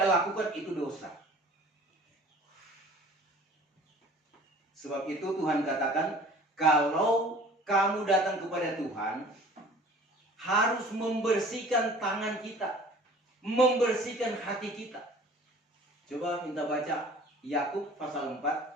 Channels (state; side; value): normal; both; correlation 0.47